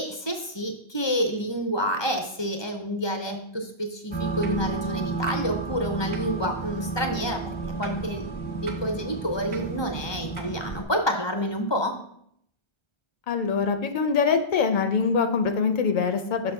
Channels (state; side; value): late; right; 1.2 ms